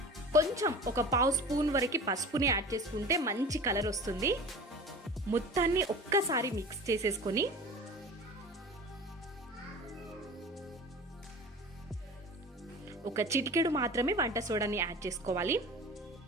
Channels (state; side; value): normal; both; correlation 0.37